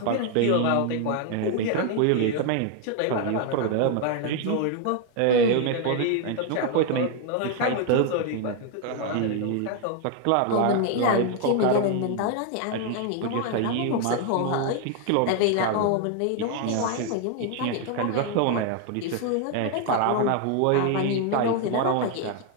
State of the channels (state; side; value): different; both; correlation 0.01